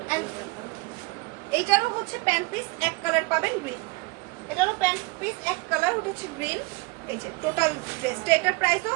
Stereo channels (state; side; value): quieter; left; 25.6 dB